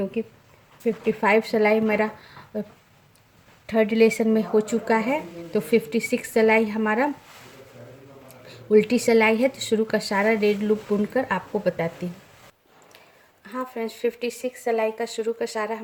55 सिलाई मेरा थर्ड लेसन में हो चुका है। तो 56 सिलाई हमारा उल्टी सिलाई है। तो शुरू का सारा रेड लूप बुनकर आपको बताती हूँ। हाँ फ्रेंड्स, 56 सिलाई का शुरू का सारा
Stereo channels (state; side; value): identical; both; correlation 1.00